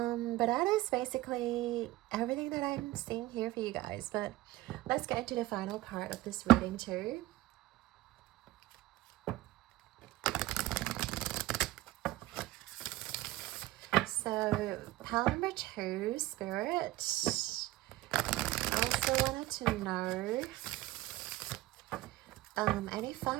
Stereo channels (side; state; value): left; quieter; 17.4 dB